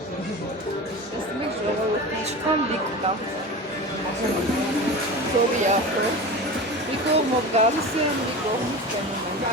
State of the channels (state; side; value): normal; both; correlation 0.30